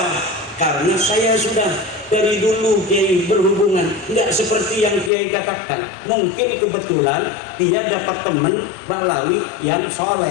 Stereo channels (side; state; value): right; drops out; at 5.1 s